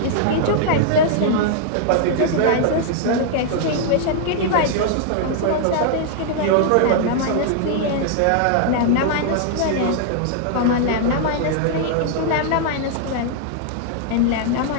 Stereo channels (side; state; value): both; different; correlation -0.01